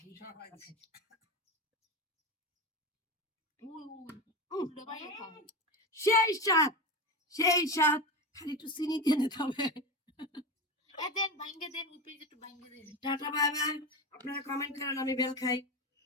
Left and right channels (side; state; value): both; normal; correlation 0.20